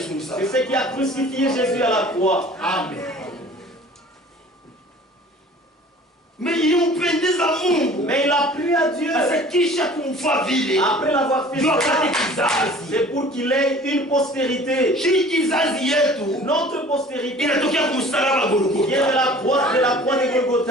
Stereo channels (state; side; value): normal; both; correlation 0.47